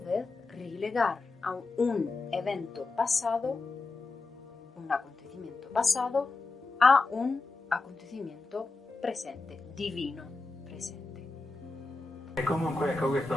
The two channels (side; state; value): right; quieter; 3.7 dB